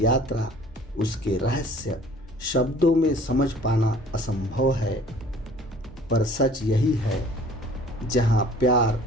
यात्रा, उसके रहस्य शब्दों में समझ पाना असंभव है। पर सच यही है, जहाँ प्यार,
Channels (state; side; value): normal; both; correlation 0.51